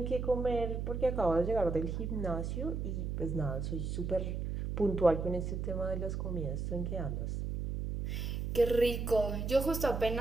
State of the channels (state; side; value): noise; right; hum, 3 dB below the sound